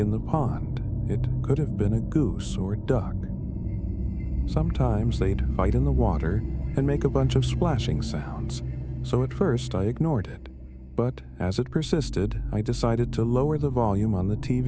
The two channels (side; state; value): both; identical; correlation 1.00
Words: the pond, it could have been a goose or duck. Sometimes they'd fight in the water and make a bunch of splashing sounds, so at first I ignored it. But as it persisted, I decided to lower the volume on the